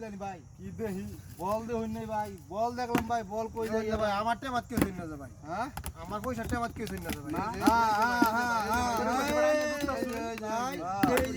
ভাই কি দেহি বল দে হইন নাই ভাই বল দেখলাম ভাই বল কই যাই ভাই আমার টেমাত কে হইন না যা ভাই হ্যাঁ আমার পয়সা টেমাত কে হইন না যা ভাই এই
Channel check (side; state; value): both; identical; correlation 1.00